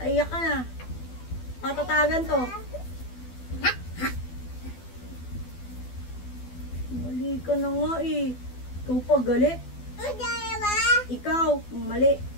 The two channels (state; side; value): late; right; 12 ms